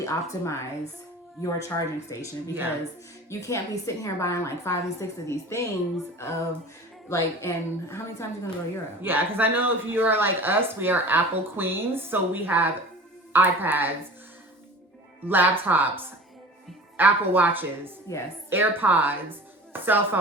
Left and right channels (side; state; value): both; normal; correlation 0.39